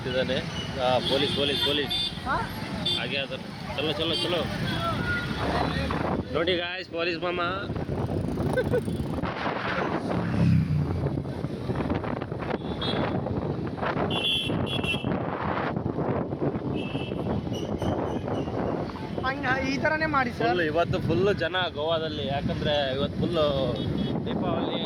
ಪೊಲೀಸ್ ಪೊಲೀಸ್ ಪೊಲೀಸ್ ಹಾಗೆ ಅದ. ಚಲೋ ಚಲೋ ಚಲೋ ನೋಡಿ ಗಾಯ್ಸ್, ಪೊಲೀಸ್ ಮಾಮ. ಈ ಥರನೇ ಮಾಡಿ ಸರ್. ಇವತ್ತು ಫುಲ್ಲು ಜನ ಗೋವಾದಲ್ಲಿ, ಯಾಕಂದರೆ ಇವತ್ತು ಫುಲ್ಲು ದೀಪಾವಳಿ,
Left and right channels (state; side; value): identical; both; correlation 1.00